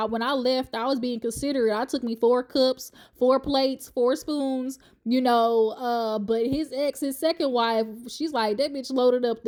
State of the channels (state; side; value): identical; both; correlation 1.00